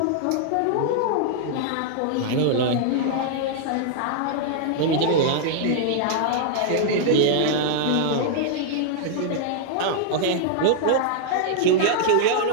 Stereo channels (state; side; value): different; both; correlation -0.01